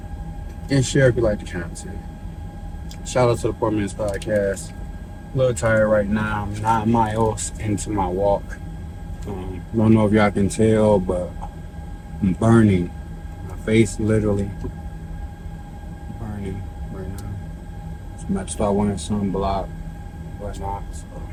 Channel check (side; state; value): both; identical; correlation 1.00